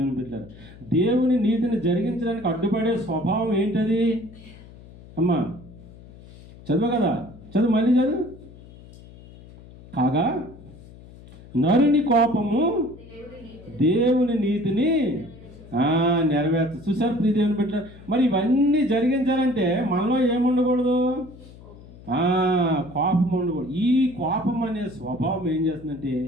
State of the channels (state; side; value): noise; left; hum, 20 dB below the sound